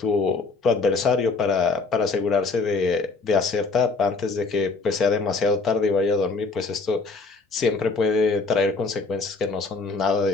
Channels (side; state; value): right; quieter; 4.0 dB